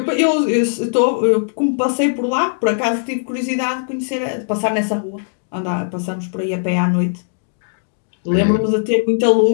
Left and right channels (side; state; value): right; silent; digital silence